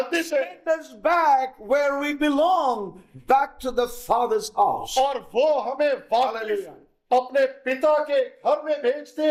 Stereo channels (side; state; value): both; identical; correlation 1.00